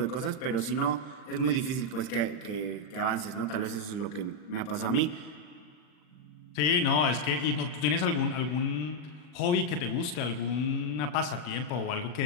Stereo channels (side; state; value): right; late; 39 ms